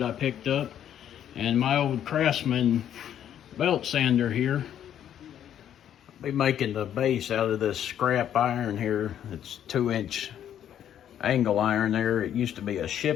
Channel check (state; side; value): quieter; right; 10.1 dB